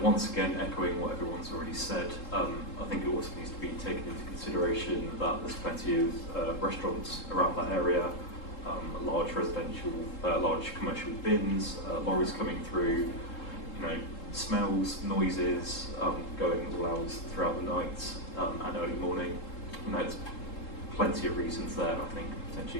once again, echoing what everyone's already said, I think it also needs to be taken into consideration that there's plenty of restaurants around that area, large residential, large commercial bins, lorries coming through, you know, smells, noises, going all hours throughout the night and early morning. You know, there's plenty of reasons there, I think,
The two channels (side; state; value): right; late; 3.7 ms